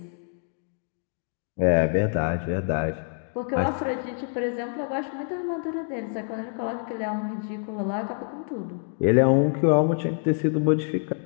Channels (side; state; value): right; silent; 61 dB below the other